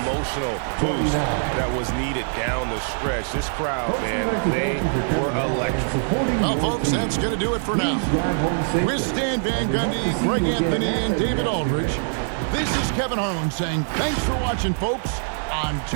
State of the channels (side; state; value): left; silent; digital silence